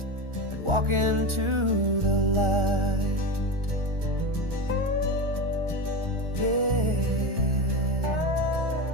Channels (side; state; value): left; late; 1.4 ms